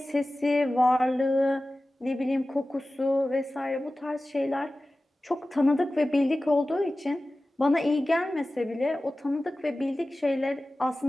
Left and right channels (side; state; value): both; normal; correlation 0.96